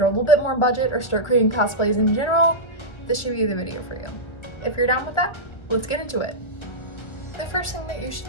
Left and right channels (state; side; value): late; right; 1.4 ms